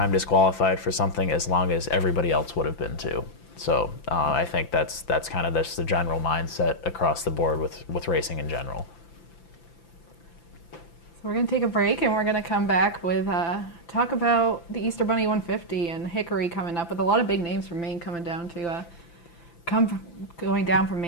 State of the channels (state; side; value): late; right; 5.9 ms